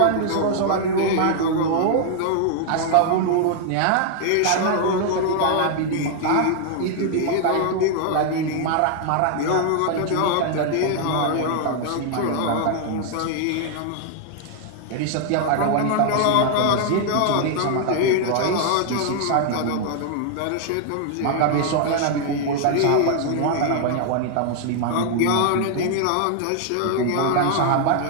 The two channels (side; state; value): both; different; correlation 0.00